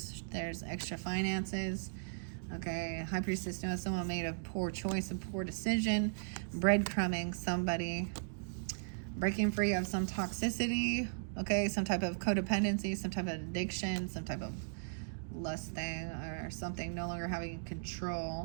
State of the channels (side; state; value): left; silent; digital silence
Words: There's extra finances. Okay, High Priestess knows someone made a poor choice, a poor decision, breadcrumbing somebody, breaking free of some toxicity, okay, some type of codependency, some type of addiction, some type of lust thing or something, no longer having